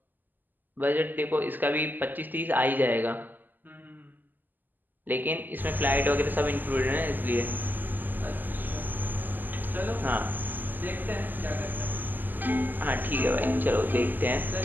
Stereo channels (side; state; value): left; late; 0.087 ms